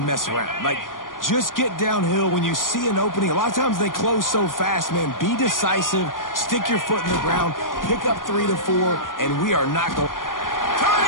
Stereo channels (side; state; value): right; late; 0.90 ms